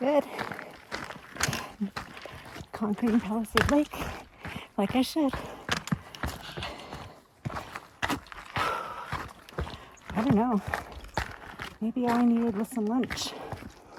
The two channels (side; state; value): both; identical; correlation 1.00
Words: Conquering Palisade Lake, like I should. I don't know. Maybe all I needed was some lunch.